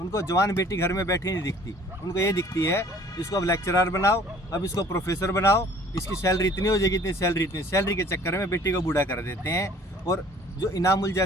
जवान बेटी घर में बैठी नहीं दिखती, उनको ये दिखती है इसको अब लेक्चरर बनाओ, अब इसको प्रोफेसर बनाओ, इसकी सैलरी इतनी हो जाएगी, इतनी सैलरी के चक्कर में बेटी को बूढ़ा कर देते हैं। और जो इनामुल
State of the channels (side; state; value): both; normal; correlation 0.52